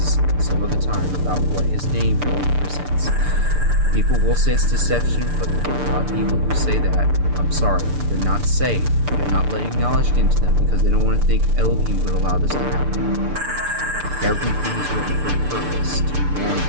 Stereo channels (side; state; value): left; late; 6.8 ms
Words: some other time about what His name really presents. People will say it's deception, but a lot of people who say that, I'm sorry, they're not saved. They're not letting knowledge get into them because they don't want to think Elohim would allow this to happen. Everything is written for a purpose to warn